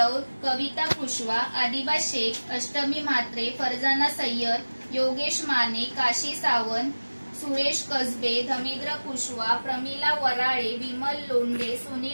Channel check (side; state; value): both; inverted; correlation -1.00